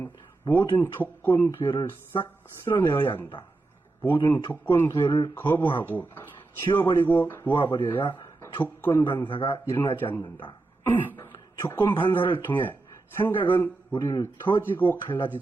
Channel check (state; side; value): quieter; left; 3.3 dB